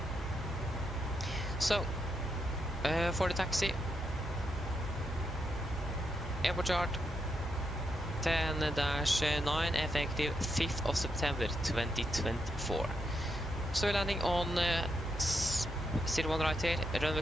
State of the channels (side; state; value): both; normal; correlation 0.82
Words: So, for the taxi, airport chart 10-9 effective 5th of September 2024. So we're landing on 01 right here, runway